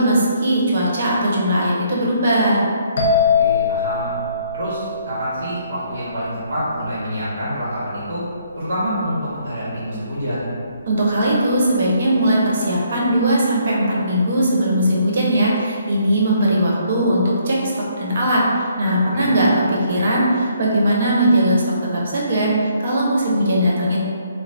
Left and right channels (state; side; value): inverted; both; correlation -0.67